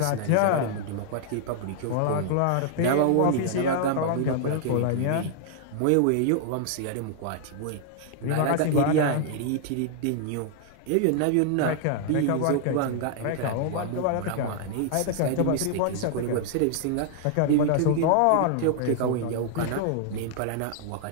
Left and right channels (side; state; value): both; different; correlation 0.00